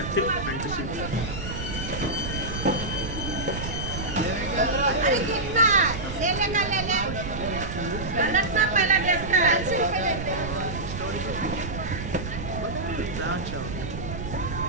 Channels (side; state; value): right; noise; rumble, 6 dB below the sound